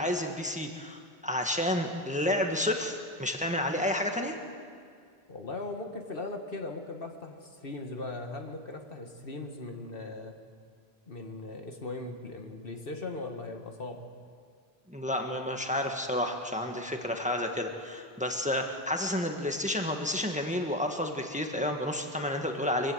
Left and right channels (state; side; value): normal; both; correlation 0.15